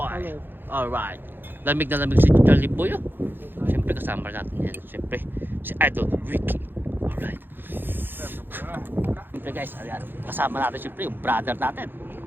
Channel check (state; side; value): late; left; 0.098 ms